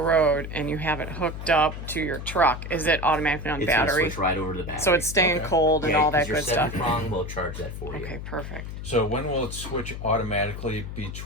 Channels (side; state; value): left; noise; hum, 8 dB below the sound